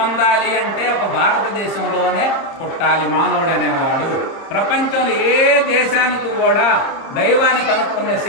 అంటే ఒక భారతదేశంలోనే పుట్టాలి మానవుడు అనేవాడు. ప్రపంచంలో ఏ దేశానికి కూడా దైవాన్ని కనుక్కునే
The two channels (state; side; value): late; right; 30 ms